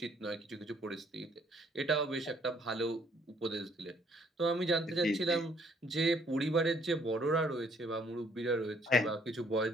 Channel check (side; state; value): both; normal; correlation 0.64